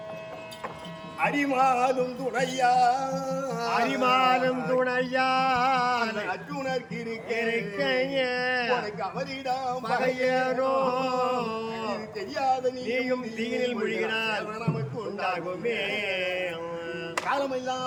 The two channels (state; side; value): identical; both; correlation 1.00